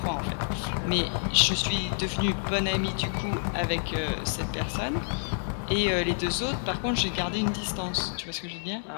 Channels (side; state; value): right; silent; 59 dB below the other